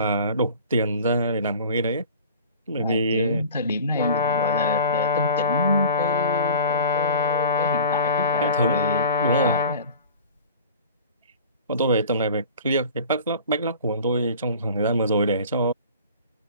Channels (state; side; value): inverted; both; correlation -0.41